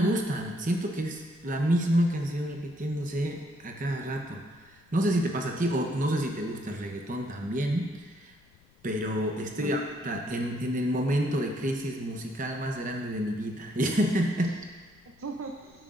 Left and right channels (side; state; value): left; noise; rumble, 29 dB below the sound